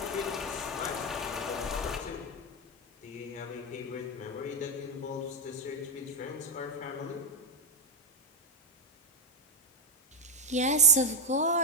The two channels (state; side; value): normal; both; correlation 0.02